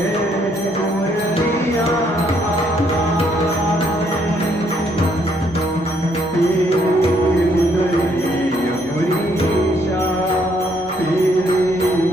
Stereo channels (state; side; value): normal; both; correlation 0.70